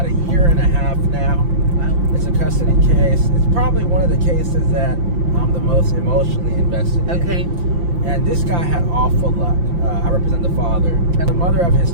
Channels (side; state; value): left; late; 5.8 ms